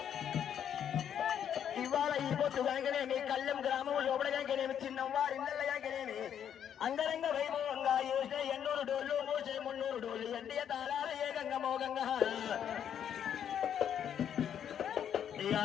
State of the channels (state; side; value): quieter; right; 9.1 dB